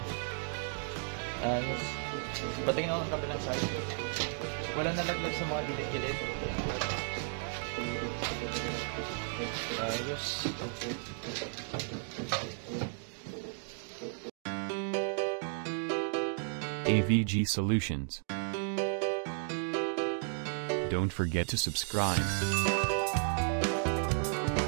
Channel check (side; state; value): left; silent; 55 dB below the other